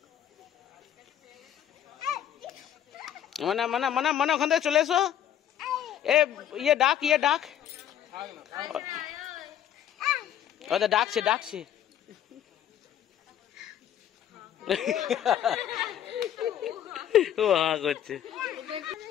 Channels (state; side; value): quieter; right; 10.4 dB